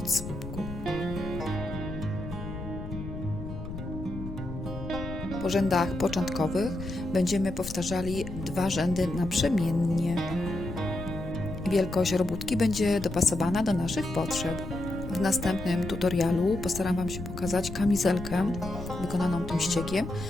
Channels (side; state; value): left; noise; rumble, 9 dB below the sound